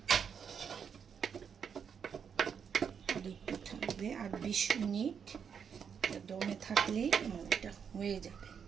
আর একটু থাকবে, আর 20 মিনিট দমে থাকলেই আমার এটা হয়ে যাবে।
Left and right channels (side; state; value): left; quieter; 7.1 dB